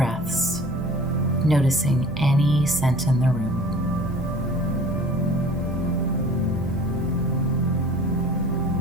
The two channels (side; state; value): both; normal; correlation 0.46